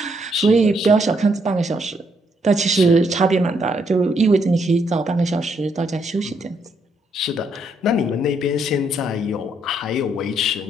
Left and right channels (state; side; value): normal; both; correlation 0.74